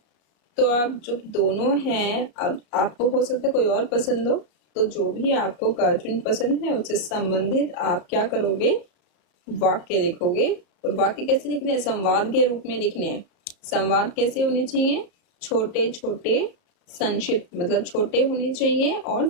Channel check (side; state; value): right; late; 33 ms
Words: तो आप जब दोनों हैं, अब आपको हो सकता है कोई और पसंद हो, तो जो भी आपको कार्टून पसंद है उससे संबंधित आप क्या करोगे? वाक्य लिखोगे। और वाक्य कैसे लिखने हैं? संवाद के रूप में लिखने हैं। संवाद कैसे होने चाहिए? छोटे छोटे, संक्षिप्त, मतलब छोटे होने चाहिए और